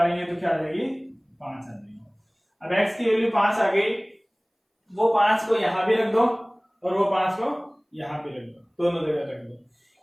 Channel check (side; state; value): both; identical; correlation 1.00